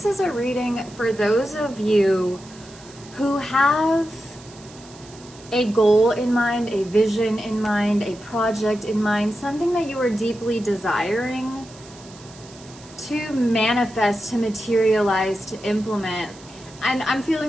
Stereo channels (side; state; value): right; noise; hiss, 21 dB below the sound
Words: is a reading for those of you who have a goal in mind, a vision in mind, a project in mind, something that you are deeply desiring to manifest, to materialize, to implement. And I'm